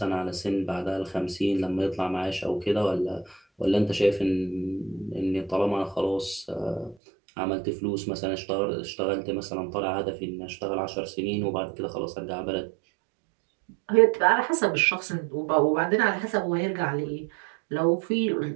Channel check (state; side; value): drops out; left; at 7.0 s